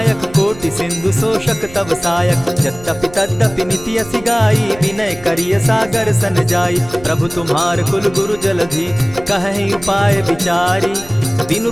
कोटि सिंधु शोषक तव सायक। यद्यपि तद्यपि निति असि गाई, विनय करिय सागर सन जाई। प्रभु तुम्हार कुल गुरु जलधि, कहि उपाय विचारी। बिनु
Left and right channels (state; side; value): noise; right; rumble, 18 dB below the sound